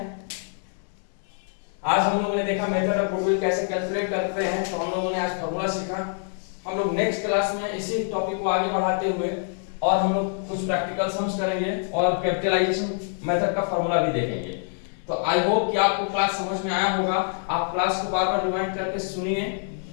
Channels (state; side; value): silent; right; 61 dB below the other